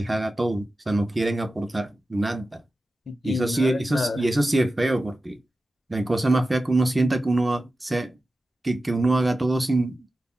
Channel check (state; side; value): normal; both; correlation 0.93